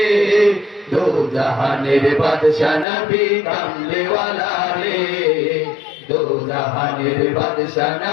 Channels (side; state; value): right; drops out; at 2.9 s